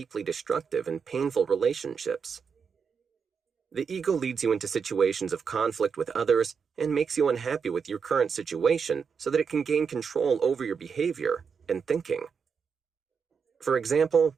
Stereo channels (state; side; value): quieter; left; 6.1 dB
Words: destructive and painful relationships. The ego leads you into situations of conflict with others and makes you unhappy with your current situation so that it can gain control over your behavior and thinking. For example,